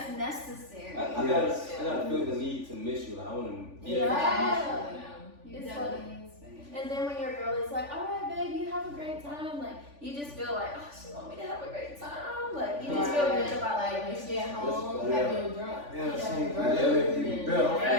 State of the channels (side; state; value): left; late; 3.5 ms